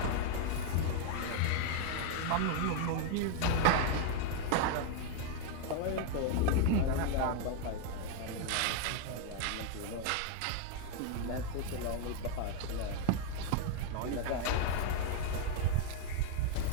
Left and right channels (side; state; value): both; different; correlation 0.00